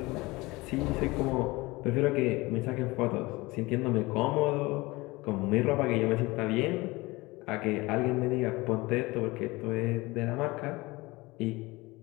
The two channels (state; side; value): quieter; right; 22.2 dB